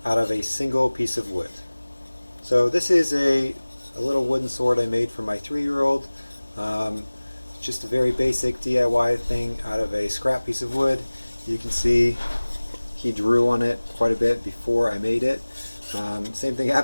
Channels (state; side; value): inverted; both; correlation -1.00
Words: out of a single piece of wood. So this is a little wooden sword I made for my 3-year-old. Just a very basic DIY thing out of a scrap piece of wood. You can see he drew on it quite a bit before I made it. Same thing